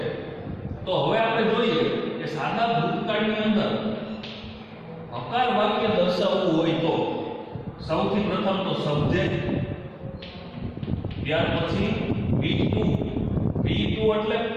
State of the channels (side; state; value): both; identical; correlation 1.00